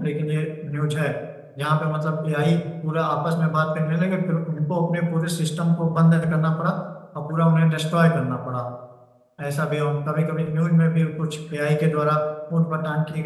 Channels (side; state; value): both; identical; correlation 1.00